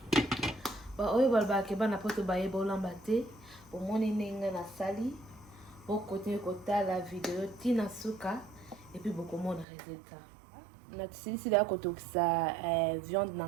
Ba oyo balba ke bana poto ba yeba olamba te bo moni ninga na sali bo continue kotala video tina suka et puis bo komona résultat. Na tsisi da kotokisa viande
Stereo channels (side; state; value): left; drops out; at 9.7 s